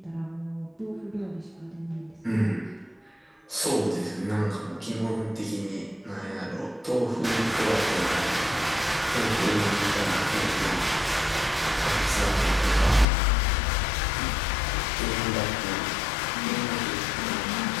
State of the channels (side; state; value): right; drops out; at 13.1 s